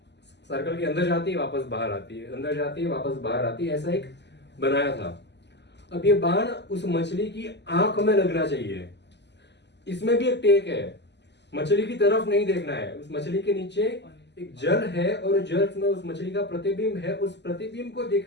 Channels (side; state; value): right; late; 0.50 ms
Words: सर्कल के अंदर जाती है वापस बाहर आती है, अंदर जाती है वापस बाहर आती है, ऐसा एक बनाया था। अब ये बाण उस मछली की आंख में लगना चाहिए। इसमें भी एक टेक है, मछली की तरफ नहीं देखना है, उस मछली के नीचे एक जल है और जल में उस मछली का प्रतिबिंब है, उस प्रतिबिंब को